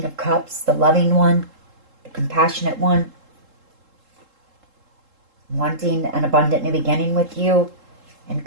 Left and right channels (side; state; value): left; late; 3.7 ms